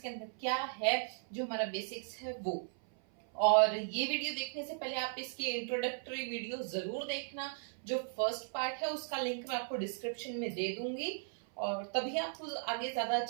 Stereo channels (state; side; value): silent; left; 53 dB below the other